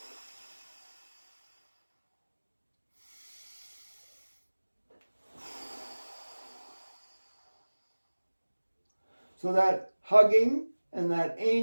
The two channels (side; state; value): both; inverted; correlation -1.00